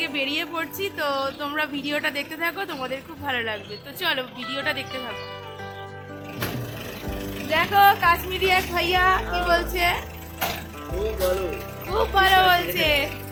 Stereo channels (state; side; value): identical; both; correlation 1.00